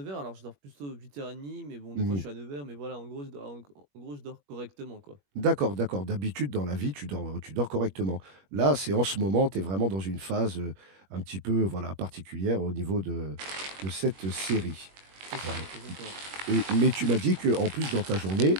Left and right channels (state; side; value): late; left; 21 ms